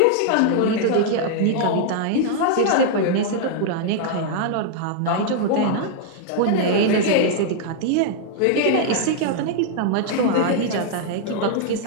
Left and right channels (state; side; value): different; both; correlation -0.01